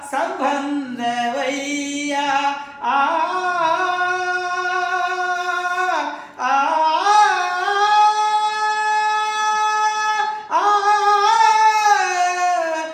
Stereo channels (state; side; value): identical; both; correlation 1.00